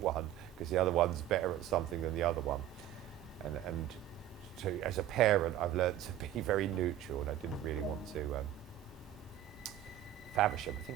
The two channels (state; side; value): quieter; left; 12.0 dB